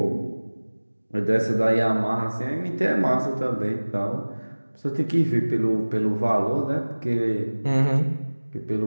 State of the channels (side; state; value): both; inverted; correlation -1.00